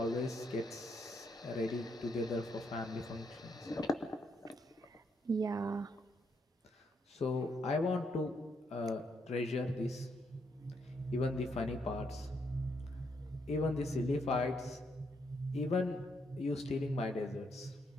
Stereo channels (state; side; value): normal; both; correlation 0.76